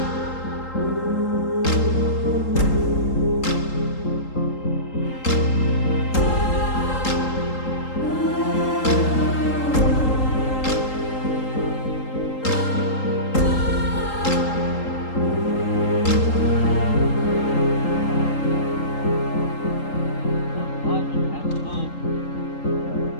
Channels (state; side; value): late; right; 3.8 ms